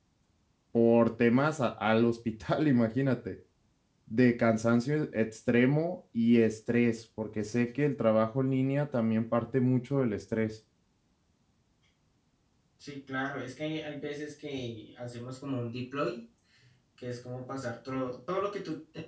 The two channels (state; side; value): identical; both; correlation 1.00